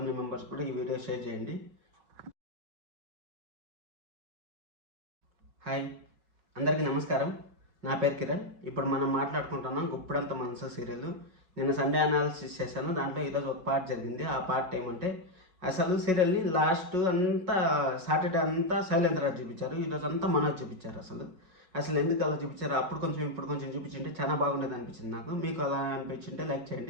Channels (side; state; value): left; late; 5.4 ms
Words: మెంబర్స్ కూడా ఈ వీడియో షేర్ చేయండి. హాయ్, అందరికీ నమస్కారం. నా పేరు కిరణ్. ఇప్పుడు మనం మాట్లాడుకుంటున్నాం గుప్పెడంత మనసు సీరియల్. నిన్న సండే అనాలిసిస్ చేశాను. దాంట్లో ఈరోజు ఒక పార్ట్ జరిగింది. ఆ పార్ట్ ఏమంటే, అసలు సీరియల్ని లాస్ట్ అంతా సాటర్డే అంతా శైలేంద్రరాజు చూపించారు, ఈరోజు అంతా మనోజ్ చూపించారు. అసలు ఎందుకు అలా చూపించారు? అప్పుడు కొంచెం ఇప్పుడు కొంచెం చూపించింటే చాలా బాగుండేది అనిపించింది నాకు. మీకు అలా అనిపించింటే లైక్